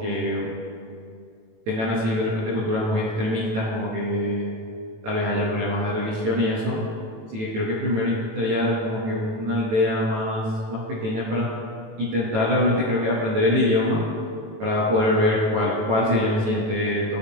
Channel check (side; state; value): left; late; 18 ms